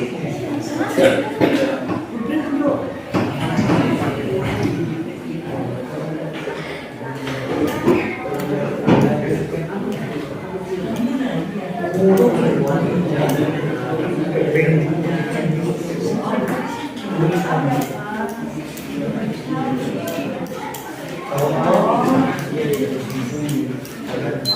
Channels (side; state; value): both; identical; correlation 1.00